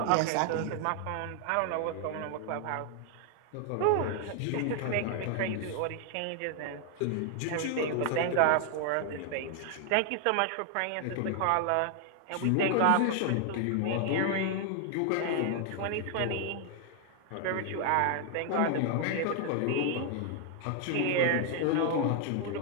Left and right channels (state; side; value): different; both; correlation 0.00